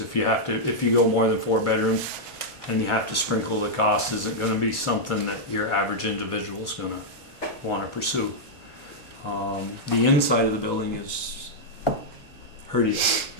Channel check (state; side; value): normal; both; correlation -0.05